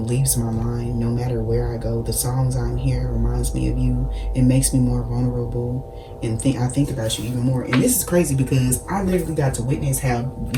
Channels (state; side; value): identical; both; correlation 1.00